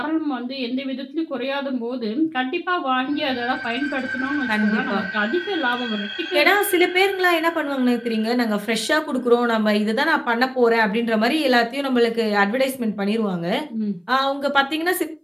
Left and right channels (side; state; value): both; identical; correlation 1.00